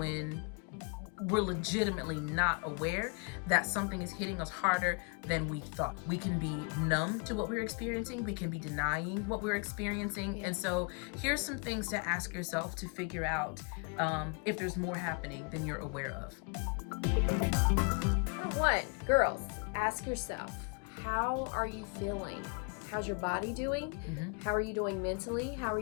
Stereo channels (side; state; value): right; quieter; 34.0 dB